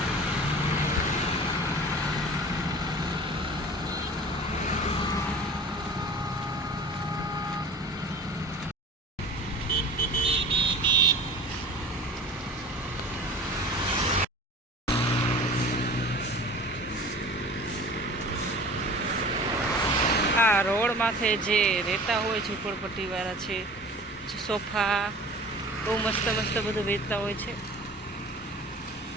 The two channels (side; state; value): both; normal; correlation 0.41